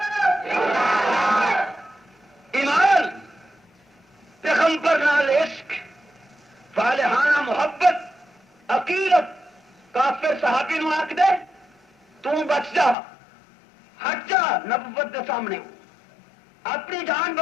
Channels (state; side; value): drops out; right; at 13.0 s